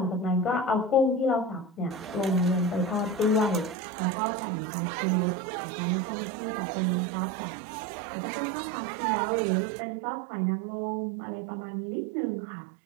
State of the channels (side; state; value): left; drops out; at 3.8 s